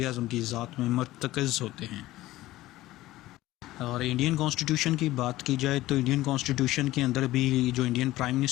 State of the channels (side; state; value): right; quieter; 16.6 dB